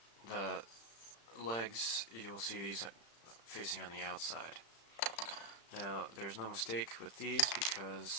the legs, you'll see these facing on the outside. Now, there's no mistake with these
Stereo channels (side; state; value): right; late; 35 ms